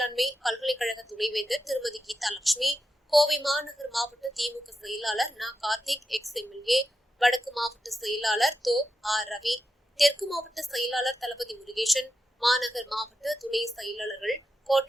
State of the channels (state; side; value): normal; both; correlation 0.88